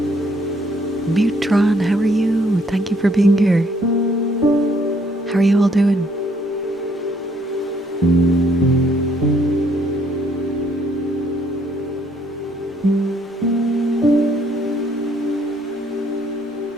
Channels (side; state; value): both; normal; correlation 0.67